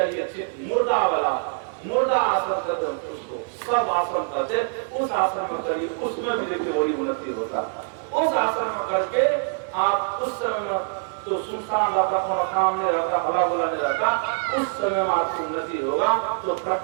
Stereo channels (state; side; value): silent; left; 57 dB below the other